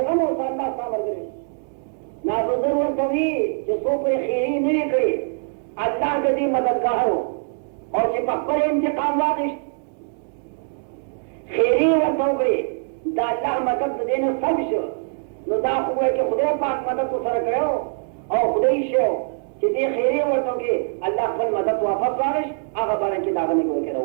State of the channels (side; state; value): left; silent; digital silence